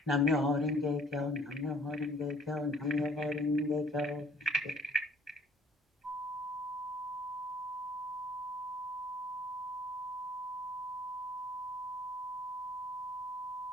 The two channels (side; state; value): both; normal; correlation 0.57